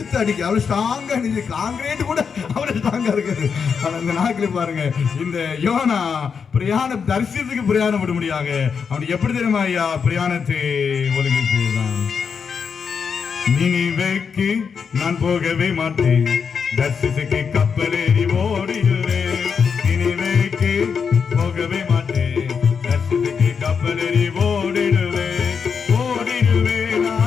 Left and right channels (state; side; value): quieter; right; 6.2 dB